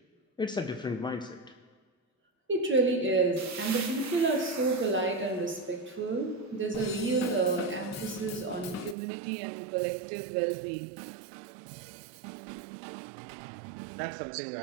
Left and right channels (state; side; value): drops out; left; at 9.0 s